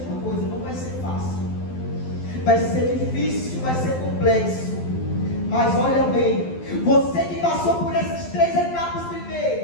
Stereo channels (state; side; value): late; right; 12 ms